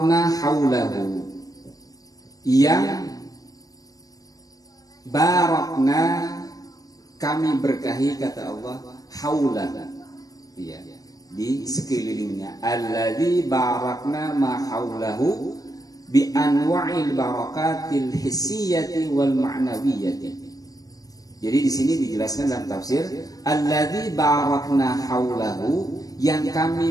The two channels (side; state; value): right; late; 0.18 ms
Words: haulahu. Yang barakna kami berkahi kata Allah haulah. Ya. Di sekelilingnya. Alladzi barakna ma haulahu bi anwa'il barakatil hissiyati wal ma'nawiyyati. Jadi di sini dijelaskan dalam tafsir alladzi barakna haulahu, yang